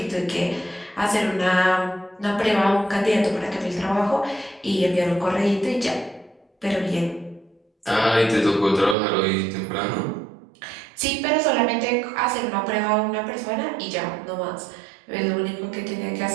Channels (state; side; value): drops out; left; at 9.0 s